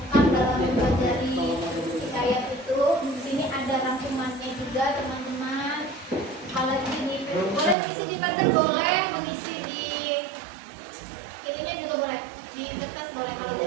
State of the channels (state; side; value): drops out; left; at 7.8 s